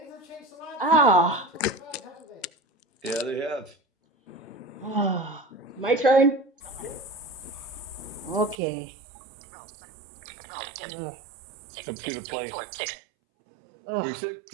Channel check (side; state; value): left; drops out; at 8.6 s